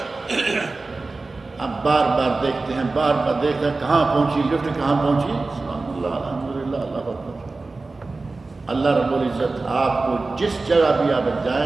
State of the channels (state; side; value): quieter; left; 3.6 dB